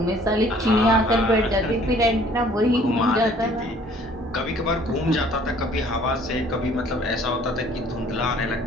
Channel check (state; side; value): normal; both; correlation 0.56